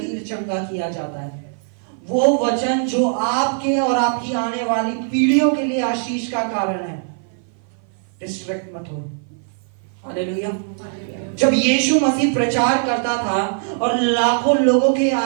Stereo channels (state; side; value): silent; left; 56 dB below the other